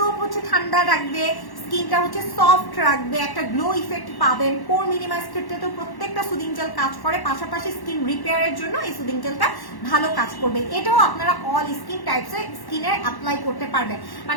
হচ্ছে ঠান্ডা রাখবে, স্কিনটা হচ্ছে সফট রাখবে, একটা গ্লো ইফেক্ট পাবেন। পোর মিনিমাইজ ক্ষেত্রে তো প্রত্যেকটা সুদিং জেল কাজ করে, পাশাপাশি স্কিন রিপেয়ারের জন্য এই সুদিং জেলটা ভালো কাজ করবে। এটাও আপনারা অল স্কিন টাইপসে স্কিনে অ্যাপ্লাই করতে পারবেন।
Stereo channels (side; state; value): right; late; 1.1 ms